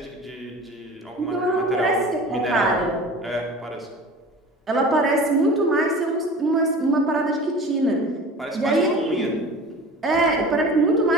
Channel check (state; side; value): normal; both; correlation 0.38